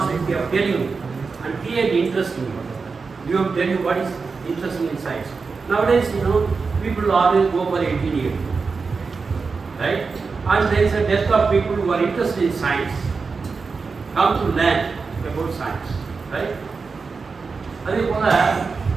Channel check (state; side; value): quieter; left; 4.7 dB